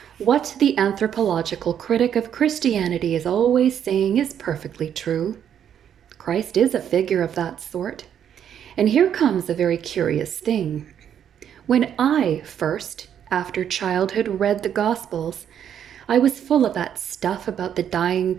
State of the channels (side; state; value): left; quieter; 9.2 dB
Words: What the anthropological critic of Christianity is always saying is perfectly true. Christ is a figure of that sort. And here comes a very curious thing. When I first, after childhood, read the Gospels, I was full of that stuff about the dying